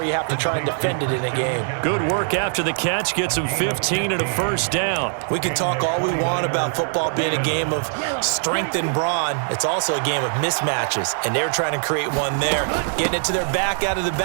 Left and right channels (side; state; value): left; silent; digital silence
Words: you have to try and defend it in a game. Good work after the catch, gets him 15 and a first down. We can talk all we want about football being a game of strength and brawn. It's also a game of mismatches, and they're trying to create one there, getting it to their back out of the